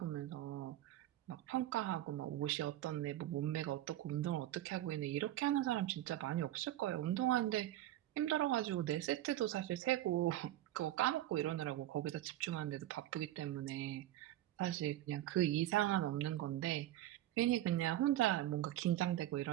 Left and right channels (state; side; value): quieter; left; 13.8 dB